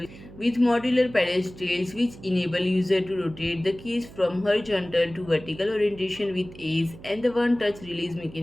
with modular pedestals which enable user to rotate the case from horizontal to vertical orientation with ease, and the one touch release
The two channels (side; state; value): right; noise; hum, 18 dB below the sound